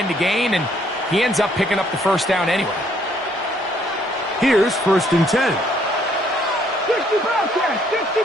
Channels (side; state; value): both; normal; correlation 0.66